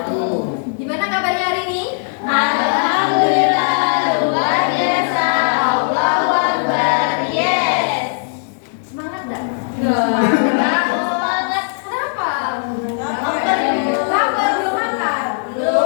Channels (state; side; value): silent; right; digital silence